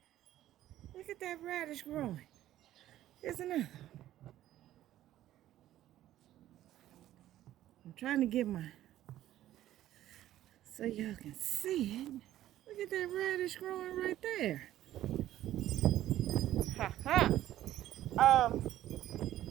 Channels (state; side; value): quieter; left; 13.3 dB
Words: Look at that radish growing. Isn't it? I'm trying to get my, so y'all can see it. Look at that radish growing right there. Ha ha.